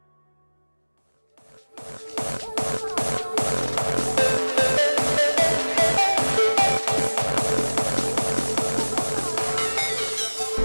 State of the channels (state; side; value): inverted; both; correlation -1.00